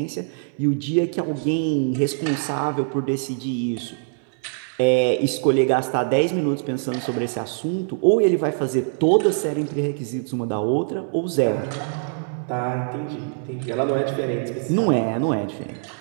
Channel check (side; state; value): left; silent; 63 dB below the other